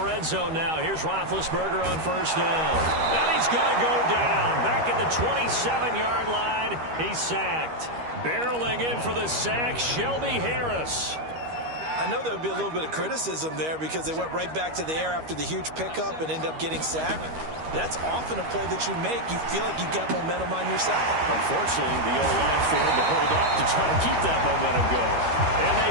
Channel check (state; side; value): late; left; 13 ms